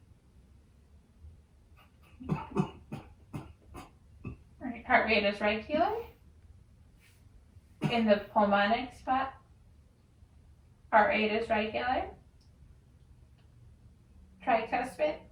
All right, heart rate is regular. In the pulmonic spot, heart rate is regular. Tricuspid,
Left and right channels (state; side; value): identical; both; correlation 1.00